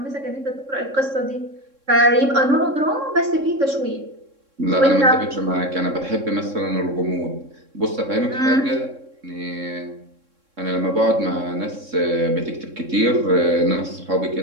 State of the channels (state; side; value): late; left; 3.6 ms